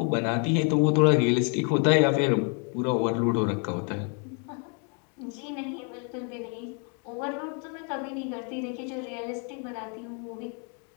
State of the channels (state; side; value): quieter; right; 38.4 dB